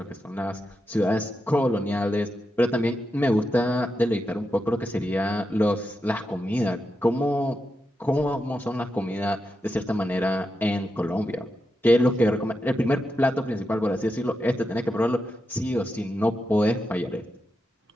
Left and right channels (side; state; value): both; normal; correlation 0.87